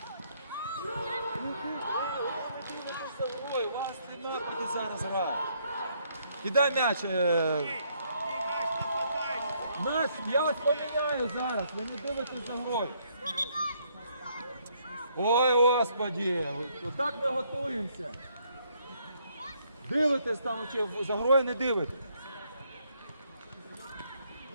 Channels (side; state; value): both; inverted; correlation -0.70